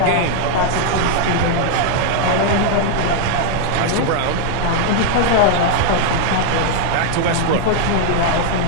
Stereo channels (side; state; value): both; different; correlation 0.00